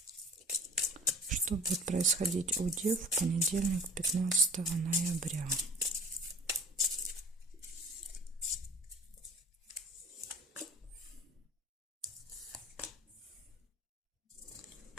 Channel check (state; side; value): normal; both; correlation 0.45